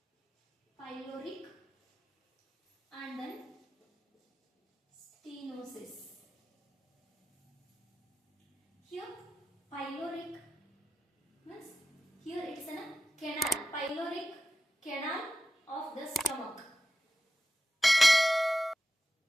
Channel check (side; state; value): both; normal; correlation 0.93